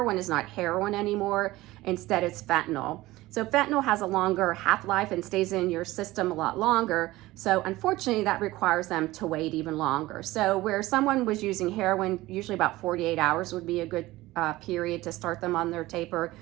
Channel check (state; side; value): quieter; left; 18.2 dB